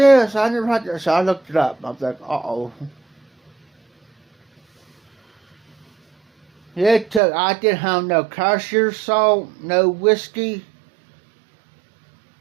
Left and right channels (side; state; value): left; drops out; at 7.2 s